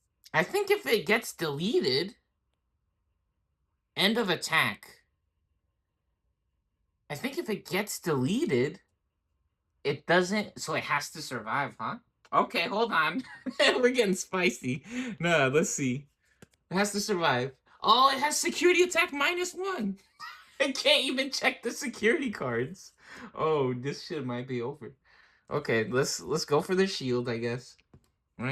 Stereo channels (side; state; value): both; identical; correlation 1.00